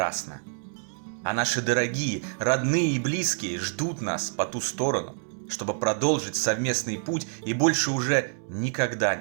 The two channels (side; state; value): left; silent; 60 dB below the other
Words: А наши дорогие, родные и близкие ждут нас по ту сторону, чтобы продолжить совместный путь и больше уже никогда